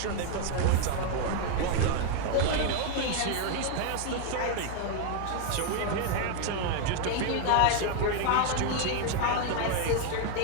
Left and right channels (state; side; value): different; both; correlation 0.00